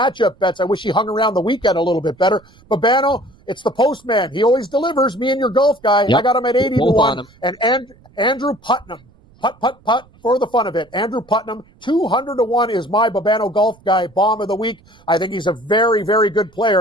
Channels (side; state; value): right; noise; rumble, 29 dB below the sound